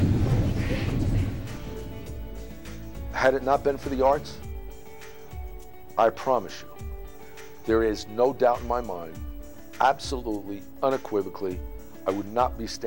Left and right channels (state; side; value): identical; both; correlation 1.00